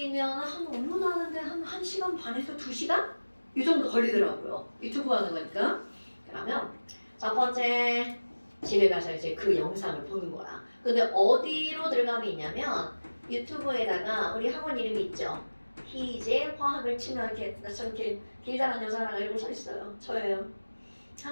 한 업로드 하는데 한 1시간 반에서 2시간? 이 정도 걸리더라고요. 유튜브 하는 거니까. 그러면 첫 번째 집에 가서 이제 그 영상을 보는 거야. 근데 어디로 들어가면 있냐면 유튜브에다가 우리 학원 이름이 있죠. 희재 화학을 치면 이렇게 저렇게 길다란 여자랑 이러고 서 있어요. 저예요.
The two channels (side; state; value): both; inverted; correlation -1.00